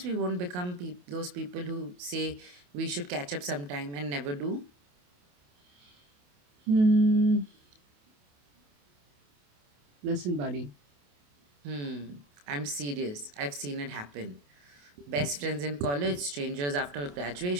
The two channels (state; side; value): late; left; 28 ms